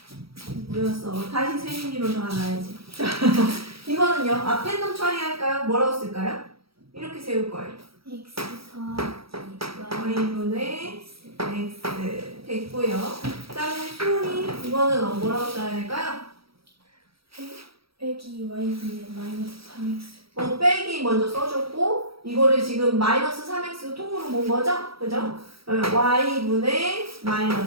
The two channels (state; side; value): late; left; 0.76 ms